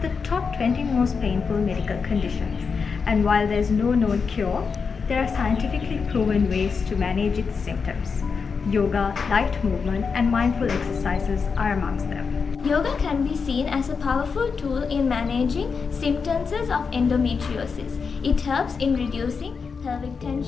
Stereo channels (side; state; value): right; quieter; 5.4 dB